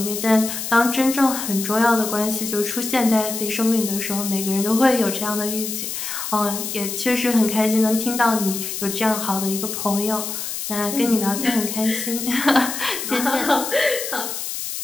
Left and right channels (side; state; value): left; noise; hiss, 5 dB below the sound